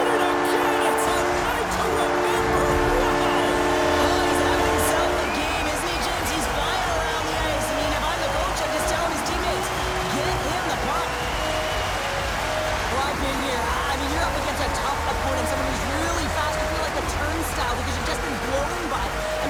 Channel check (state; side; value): identical; both; correlation 1.00